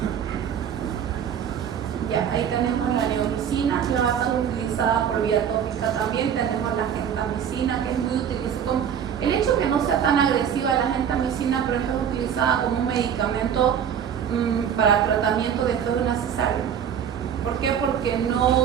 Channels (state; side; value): quieter; left; 8.5 dB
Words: Ya, Ahí tenemos la neomicina, que va a ser utilizada por vía tópica también. Tenemos la gentamicina, que es muy utilizada. El hecho que no sea tan agresiva la gentamicina, pero es utilizada como un medicamento para tratamiento después de una cesárea. ¿Por qué? Porque